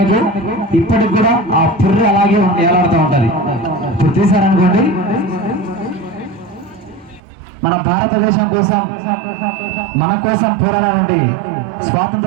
మీకు? ఇప్పటికి కూడా ఆ పుర్రె అలాగే ఏలాడుతూ ఉంటది. ఇప్పుడు తీశారనుకోండి, మన భారతదేశం కోసం మన కోసం పోరాడాల నుండి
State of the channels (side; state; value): left; drops out; at 7.2 s